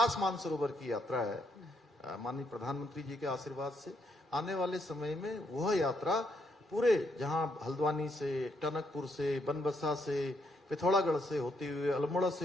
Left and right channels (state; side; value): normal; both; correlation 0.75